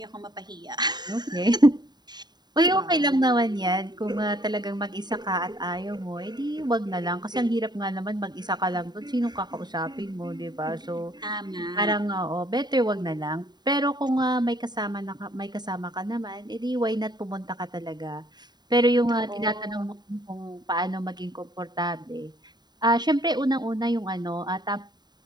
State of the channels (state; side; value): late; left; 0.20 ms